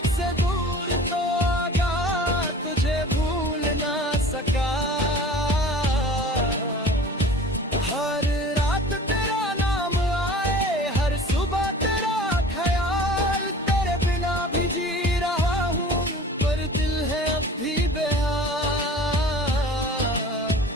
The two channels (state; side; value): normal; both; correlation 0.43